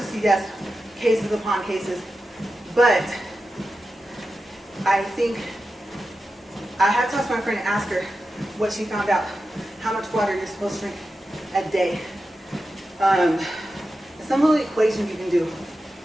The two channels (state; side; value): normal; both; correlation 0.91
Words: yes, cases upon cases, but I think I had to ask my friend and ask her what she found out, how much water you're supposed to drink a day. Some little equation you can do.